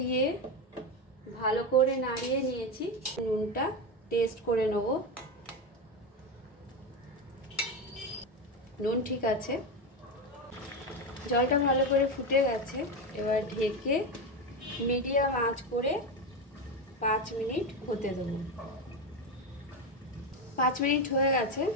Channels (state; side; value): normal; both; correlation 0.14